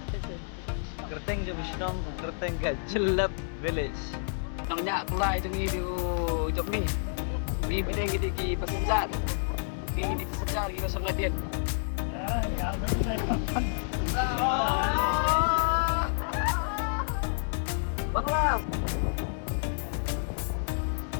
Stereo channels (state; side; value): silent; right; digital silence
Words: Kerteng je Bishnong, Kerteng ka Jelap Village. Nang nyak kulai tu ni di job ni. Di bedeng kita ki pasar. Di pasar kita sangat dia. Bangla.